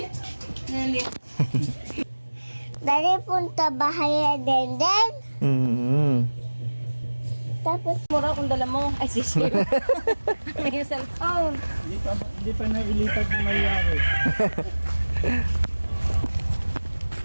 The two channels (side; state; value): both; inverted; correlation -1.00